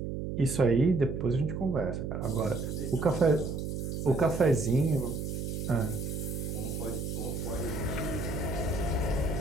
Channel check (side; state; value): right; noise; hum, 4 dB below the sound